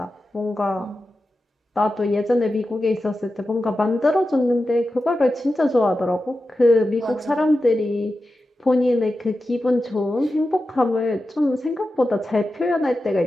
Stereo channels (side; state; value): both; normal; correlation 0.92